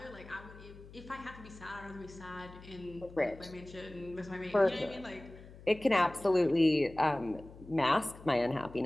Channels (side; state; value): left; noise; hum, 18 dB below the sound